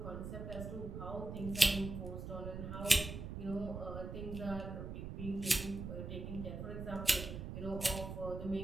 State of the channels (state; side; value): noise; right; rumble, 7 dB below the sound